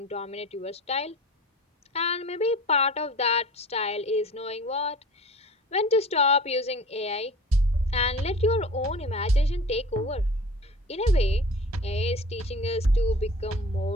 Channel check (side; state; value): both; normal; correlation 0.41